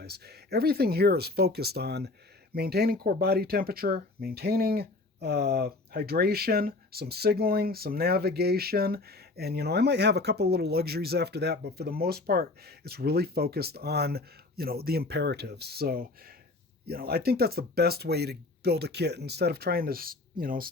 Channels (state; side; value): quieter; right; 3.2 dB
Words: Everything here is focused on maintaining core body temperature, maintaining hydration, some signaling, some navigation, and I might have a couple little luxuries after that, but for the most part, it's really focused on the imperatives. So I think that's the best way to build a kit instead of trying to